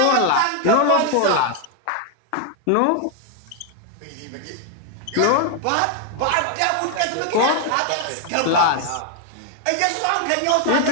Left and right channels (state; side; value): different; both; correlation 0.01